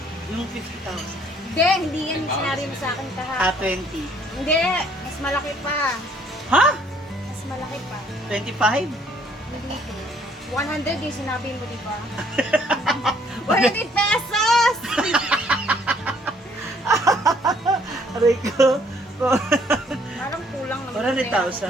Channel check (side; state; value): both; normal; correlation 0.63